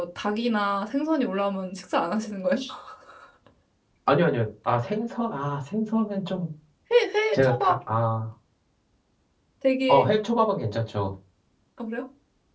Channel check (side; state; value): both; identical; correlation 1.00